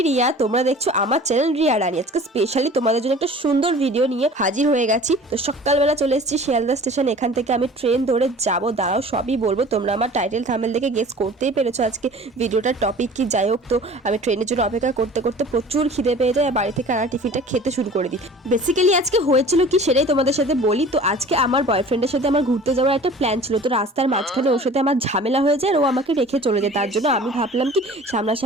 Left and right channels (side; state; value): both; normal; correlation 0.44